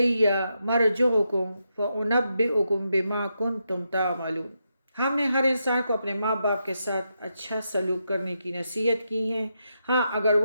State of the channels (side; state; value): both; inverted; correlation -0.84